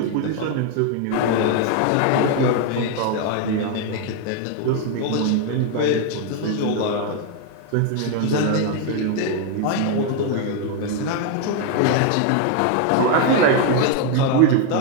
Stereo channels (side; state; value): both; different; correlation 0.01